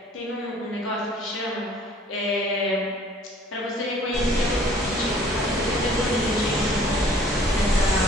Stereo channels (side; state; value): both; normal; correlation 0.55